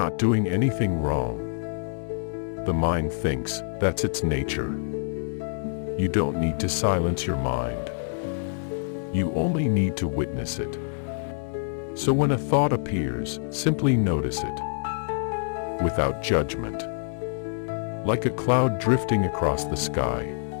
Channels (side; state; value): right; silent; digital silence